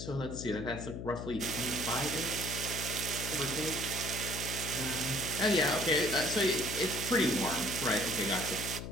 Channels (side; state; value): left; noise; hum, 7 dB below the sound